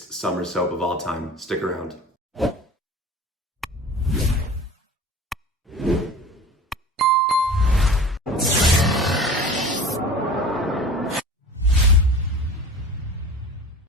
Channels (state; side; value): normal; both; correlation 0.39